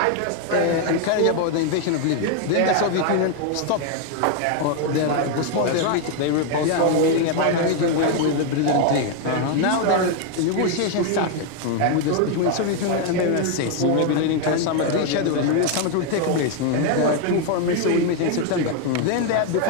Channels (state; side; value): different; both; correlation 0.01